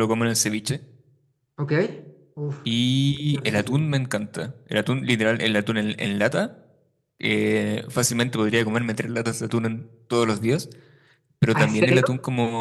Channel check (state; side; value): identical; both; correlation 1.00